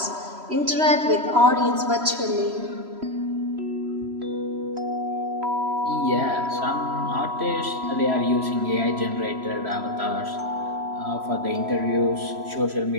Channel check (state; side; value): late; left; 3.0 ms